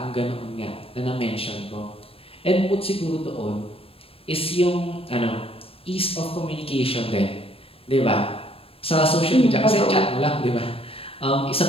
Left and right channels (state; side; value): late; right; 0.28 ms